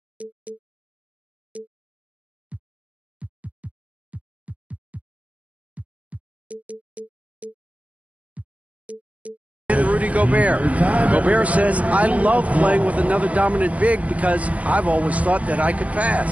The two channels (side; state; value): left; late; 0.067 ms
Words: Rudy Gobert. Gobert says, I love playing with another dominant big because I've always thought that I could